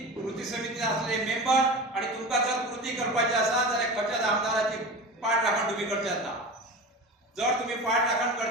असलेले मेंबर आणि तुमका जर कृती करपाची असा जाल्यार खंयच्याच आमदाराची पाठ राखण तुम्ही करच्यात ना. जर तुम्ही पाठ राखण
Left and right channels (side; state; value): both; normal; correlation 0.30